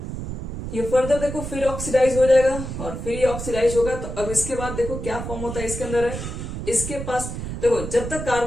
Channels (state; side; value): noise; right; rumble, 7 dB below the sound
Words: ये फर्दर देखो फिर ऑक्सीडाइज हो जाएगा और फिर ये ऑक्सीडाइज होगा। तो अब इसके बाद देखो क्या फॉर्म होता है इसके अंदर है, इसके पास देखो जब तक